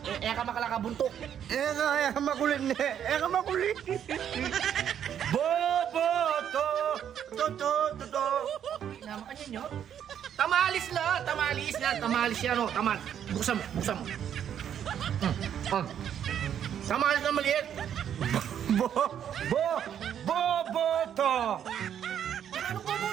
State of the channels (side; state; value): left; quieter; 9.3 dB